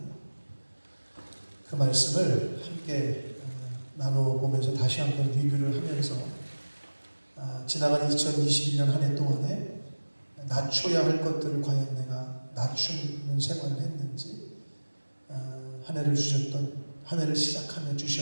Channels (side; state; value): both; inverted; correlation -1.00